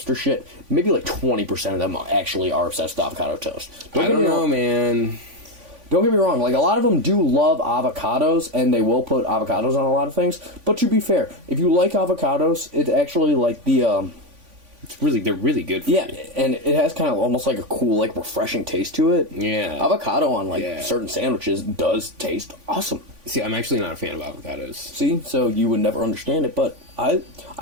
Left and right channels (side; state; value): left; late; 3.5 ms